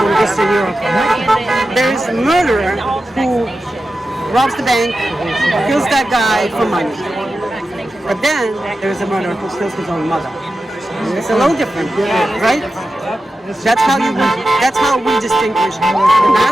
Eastern Europe, there is a murderer who robs the bank, kills that guy for money. But then there's a murderer who kills his own mother. It's a little different, right? That's how we distinguish the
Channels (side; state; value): both; normal; correlation 0.91